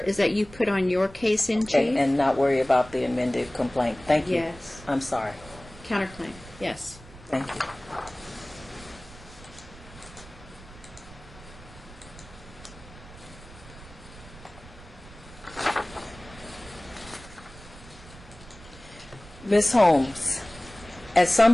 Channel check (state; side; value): noise; right; rumble, 19 dB below the sound